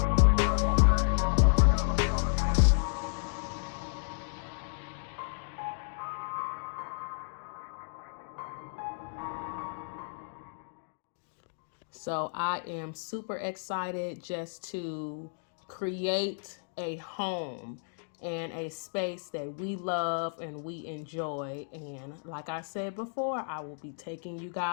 So I am super excited just to create a home and a space that we love and we enjoy. And like I said before, I will be taking you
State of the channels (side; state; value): right; silent; digital silence